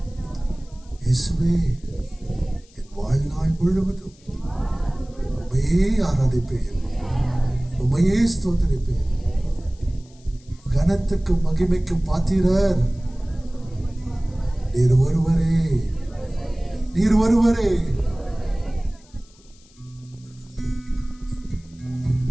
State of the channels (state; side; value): noise; left; hiss, 28 dB below the sound